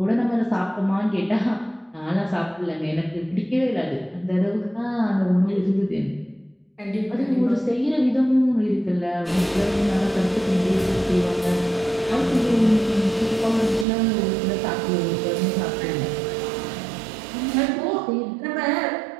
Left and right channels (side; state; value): left; drops out; at 13.9 s